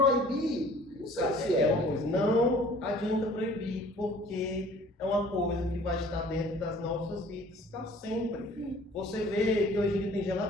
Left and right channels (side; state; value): both; normal; correlation 0.51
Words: não sei se é. Uma coisa, não adianta proibir, porque é uma coisa que vai estar dentro das nossas vidas para sempre. Você vê que hoje em dia tem